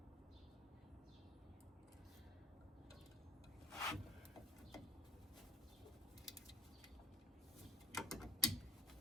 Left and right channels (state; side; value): normal; both; correlation 0.56